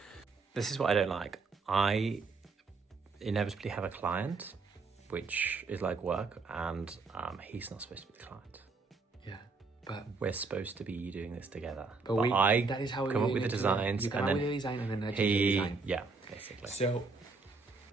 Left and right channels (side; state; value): left; quieter; 4.2 dB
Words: This is what I don't like. I inevitably have a client, which is like work, and he's not supposed to be the client. Yeah, but we're supposed to be doing this together. But that is how we come up with the designs. You come up with the design and then I change the design. Yeah, basically. So